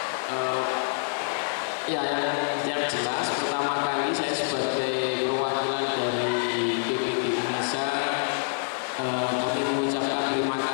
Yang jelas, pertama kali saya sebagai perwakilan dari PPD Indonesia, kami mengucapkan terima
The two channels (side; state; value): right; silent; digital silence